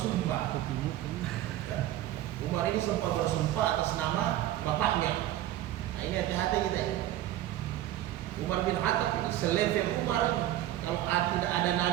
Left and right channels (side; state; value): left; quieter; 13.6 dB